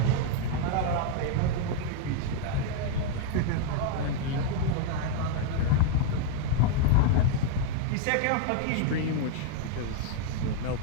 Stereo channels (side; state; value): both; different; correlation 0.00